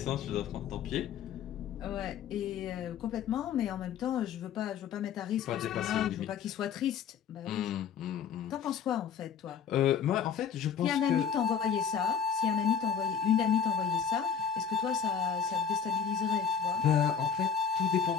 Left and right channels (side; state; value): right; quieter; 7.3 dB